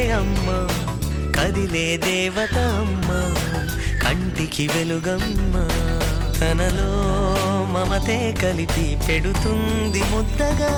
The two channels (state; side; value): identical; both; correlation 1.00